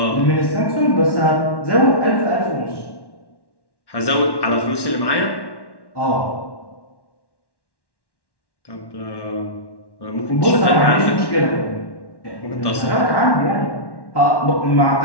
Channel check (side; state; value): right; late; 1.1 ms